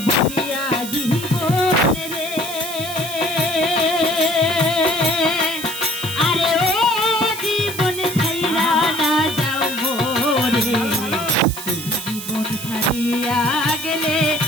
বলিয়া জীবন রে, আরে ও জীবন ছাইরা না যাও মোরে, জীবন ছাড়িয়া গেলে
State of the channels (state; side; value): noise; right; hiss, 9 dB below the sound